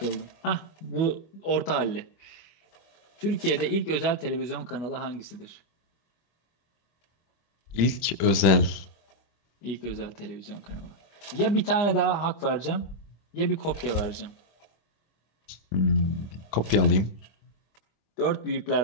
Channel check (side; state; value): right; late; 26 ms